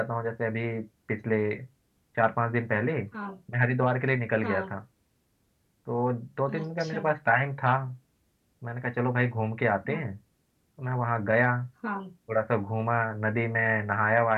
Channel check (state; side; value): identical; both; correlation 1.00